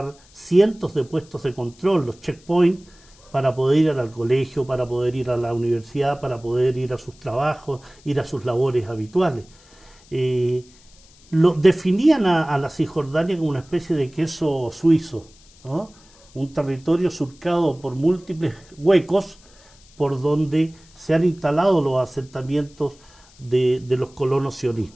cientos de puestos de control, los checkpoints, para poder ir al colegio, para poder ir a la universidad, para poder ir a sus trabajos, ir a sus labores habituales. Definían a la Cisjordania como una especie de queso suizo, ¿no? Un territorio surcado por múltiples huecos por donde se han instalado los asentamientos de los colonos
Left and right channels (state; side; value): noise; left; hiss, 27 dB below the sound